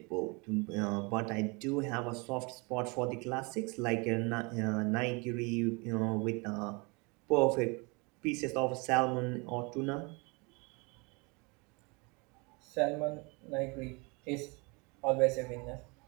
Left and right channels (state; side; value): quieter; left; 29.3 dB